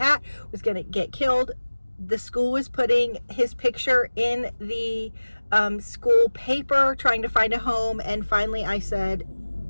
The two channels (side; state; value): both; inverted; correlation -1.00